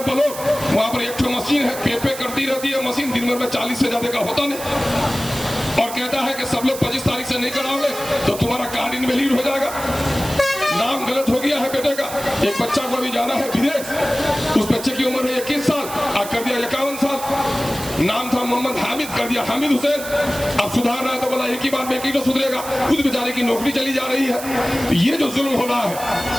बोलो, वहां पर एक मशीन है, पे करती रहती है मशीन, दिन भर में 40 से ज्यादा का होता नहीं, और कहता है कि सब लोग 25 तारीख से नहीं कराओगे तो तुम्हारा कार्ड इनवैलिड हो जाएगा। नाम गलत हो गया है बेटे का। एक बच्चा को अभी जाना है विदेश, उस बच्चे की उम्र है 21 साल, कर दिया 51 साल। नाम था मोहम्मद हामिद, कर दिया हामिद हुसैन। अब सुधारना है तो बोला एक ही बार में एक ही तो सुधरेगा, खुद बेचारे की नौकरी चली जा रही है। ये जो जुल्म हो रहा है,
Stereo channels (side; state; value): right; noise; hiss, 11 dB below the sound